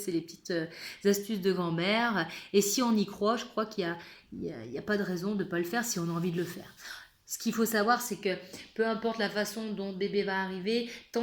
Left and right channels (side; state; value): both; identical; correlation 1.00